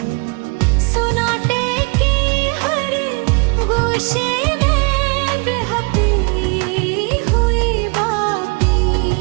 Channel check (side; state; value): left; quieter; 32.0 dB